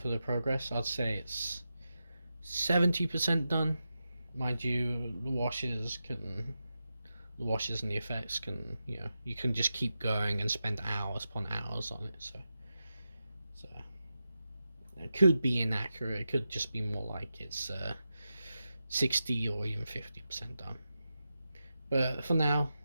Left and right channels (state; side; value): inverted; both; correlation -0.90